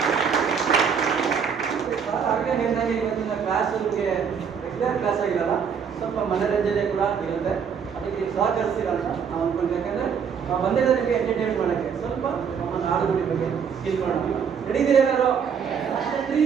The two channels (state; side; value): quieter; left; 6.9 dB